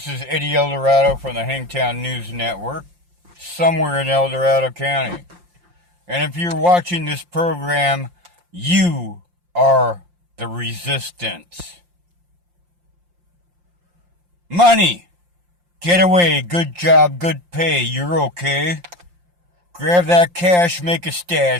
is Eddie Eldorado from the Hangtown News Network, somewhere in El Dorado County. And if you're watching this program, you are the resistance. Money! Get away, good job, good pay, you're okay. Grab that cash, make a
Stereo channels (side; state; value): left; late; 5.7 ms